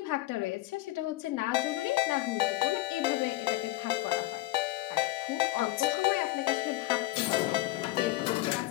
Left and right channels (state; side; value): quieter; right; 18.2 dB